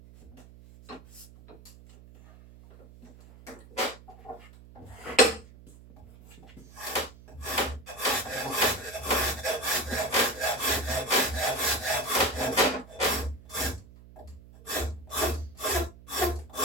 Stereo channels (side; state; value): right; noise; hum, 20 dB below the sound